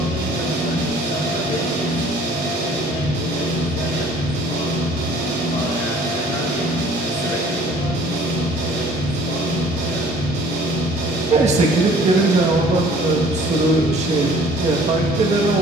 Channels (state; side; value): normal; both; correlation 0.53